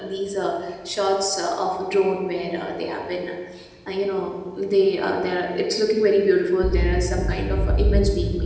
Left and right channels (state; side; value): identical; both; correlation 1.00